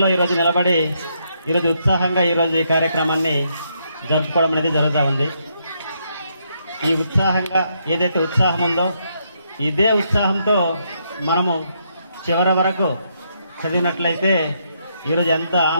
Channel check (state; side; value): inverted; both; correlation -0.76